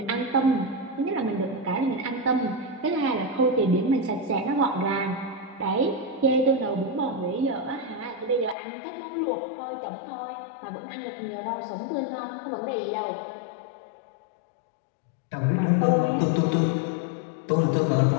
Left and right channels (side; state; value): right; drops out; at 8.6 s